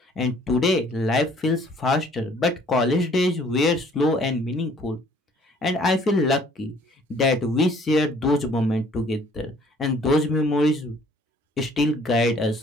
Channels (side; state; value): both; normal; correlation 0.58